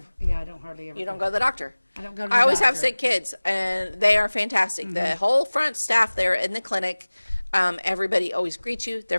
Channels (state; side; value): inverted; both; correlation -1.00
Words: hardly ever. You don't go to the doctor. I don't go to the I always doctor. have sick kids, and they are fantastic. The whole front staff there in the clinic, everybody always greets you. They're